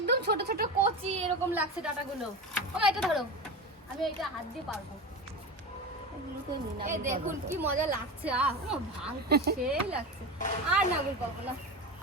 ছোট ছোট কচি এরকম লাগছে ডাটাগুলো। ও এটা ধরো, আমি এটা হাত দিয়ে পারবো। এই দেখুন কি মজা লাগছে। ভাঙতে সেই লাগছে। আর নাগুল পাবো না,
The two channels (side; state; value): both; normal; correlation 0.24